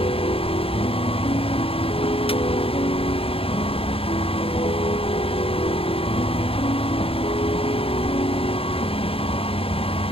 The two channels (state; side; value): late; right; 0.27 ms